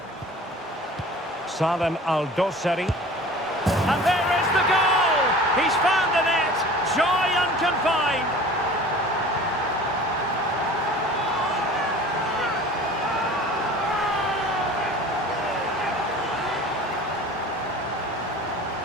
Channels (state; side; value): normal; both; correlation 0.42